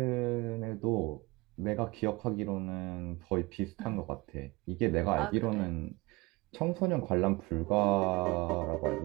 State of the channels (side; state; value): left; quieter; 23.4 dB